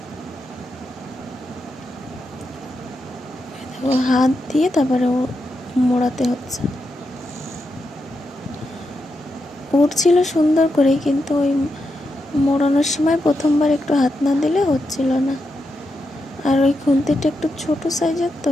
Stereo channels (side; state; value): both; normal; correlation 0.85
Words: দেখো হাত দিয়ে তারপরে মোড়াতে হচ্ছে। উঠছিল সুন্দর করে, কিন্তু ওই মোড়ানোর সময় প্রথমবার একটু হাত না দিলে হচ্ছিল না। আর ওই খুন্তিটা একটু ছোট সাইজের, তো